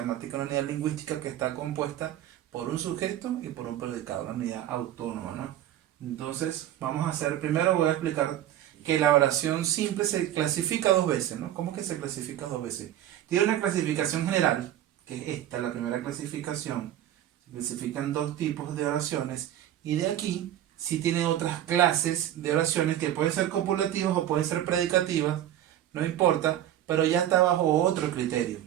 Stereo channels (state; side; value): quieter; left; 12.1 dB